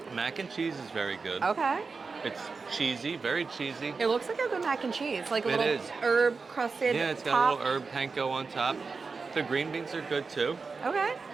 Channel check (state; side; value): quieter; left; 4.6 dB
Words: Mac and cheese is very good. Okay. It's cheesy, very cheesy. It looks like a good mac and cheese, like a It little is. herb crusted Yeah, it's got top. a little herb panko on top. The green beans are good too. Okay.